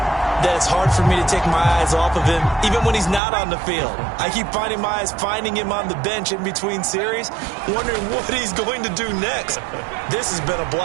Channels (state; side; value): drops out; left; at 3.2 s